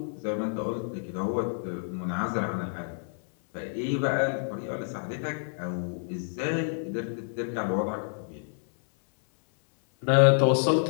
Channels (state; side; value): silent; right; 59 dB below the other